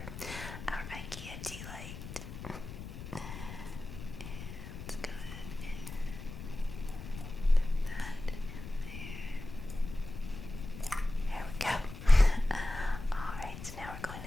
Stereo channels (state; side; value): noise; left; rumble, 10 dB below the sound